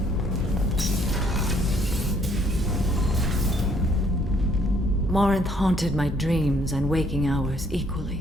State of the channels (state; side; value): normal; both; correlation 0.66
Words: Morinth haunted my dreams and waking hours